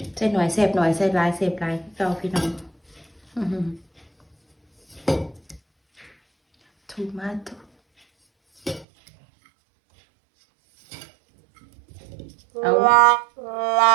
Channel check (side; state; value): left; drops out; at 8.8 s